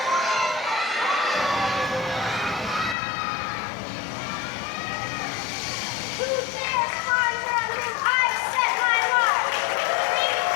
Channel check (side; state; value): right; drops out; at 3.0 s